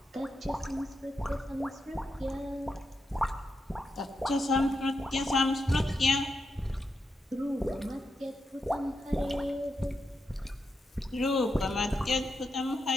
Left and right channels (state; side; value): normal; both; correlation 0.85